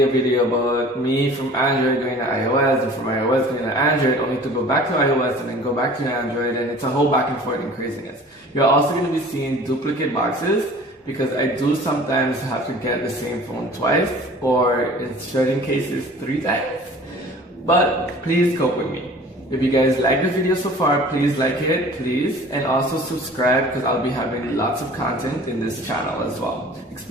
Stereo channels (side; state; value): both; normal; correlation 0.45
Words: a video about me from Android going to iOS and from iOS going to Android, only to go back to iOS and then go back to Android, and it's a whole back and forth and craziness. You're also going to be seeing duplicate boxes because I do sometimes have to get the same phone twice or in certain cases 3 times. But please cope with me. If you guys like the video so far, please like it, please, and also subscribe because I'll be having lots of content in this channel as well,